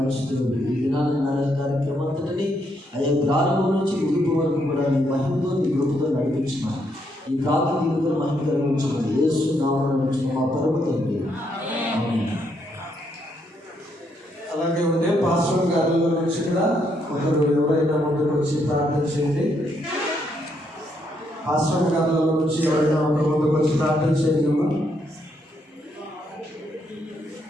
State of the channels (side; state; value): both; normal; correlation 0.75